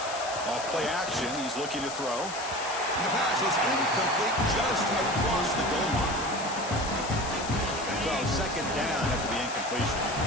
Off play action, he's looking to throw. And the pass is incomplete just across the goal line. So second down after the incompletion.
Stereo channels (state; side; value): noise; left; hiss, 10 dB below the sound